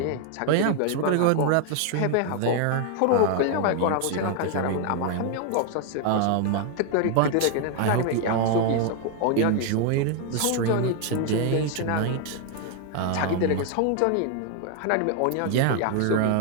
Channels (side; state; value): both; different; correlation 0.00